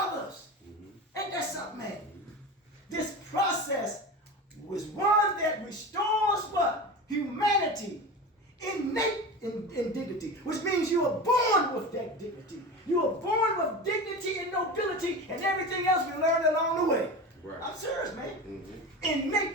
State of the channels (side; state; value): both; normal; correlation 0.28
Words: Ain't that something, man? This process was one that restores what? Humanity. Innate in dignity, which means you are born with that dignity. You are born with dignity and nobility and everything else we learned along the way. Right. I'm serious, man.